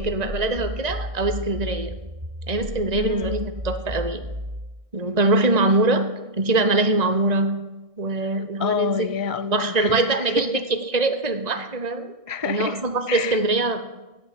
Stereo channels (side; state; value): left; late; 1.6 ms